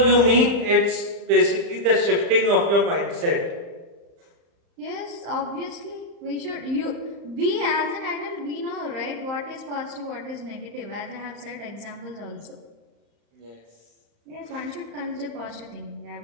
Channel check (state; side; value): late; left; 35 ms